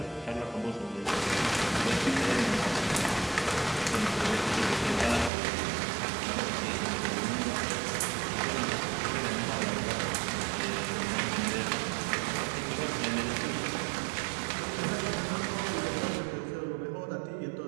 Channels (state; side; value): drops out; left; at 5.3 s